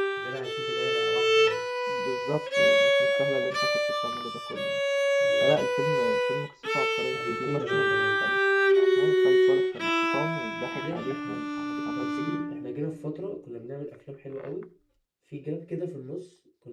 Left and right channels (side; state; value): both; identical; correlation 1.00